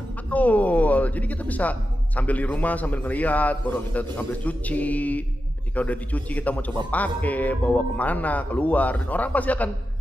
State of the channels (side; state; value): both; normal; correlation 0.91